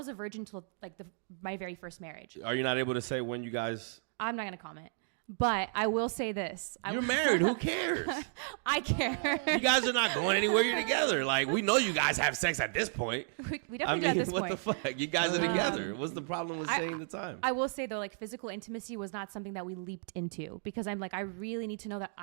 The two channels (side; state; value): left; silent; digital silence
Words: a virgin till like my very first marriage. Are you not able to say when you guys? I'm not going to comment. But I will say this. You're married. Who cares? I care. You guys are not going anywhere. You're together. Like, we know you guys have sex at this point. We definitely do at this point. What the fuck? You guys are together. What's the problem with saying the time? I will say, though, like, physical intimacy was not something that we leaped into because I'm like, I really need to know that